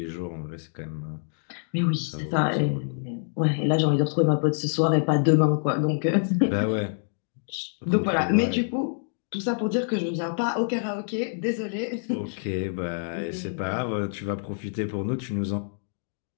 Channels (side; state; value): right; silent; digital silence